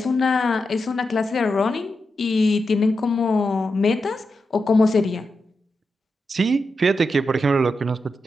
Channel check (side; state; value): both; normal; correlation 0.87